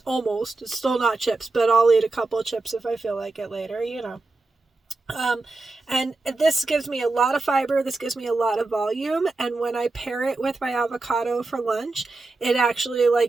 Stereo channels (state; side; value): quieter; left; 3.3 dB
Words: almost. It's still not chips, but I'll eat a couple of chips if I feel like it later, and this gives me a lot of fiber, this gives me a lot of volume, and when I pair it with my avocado for lunch, it actually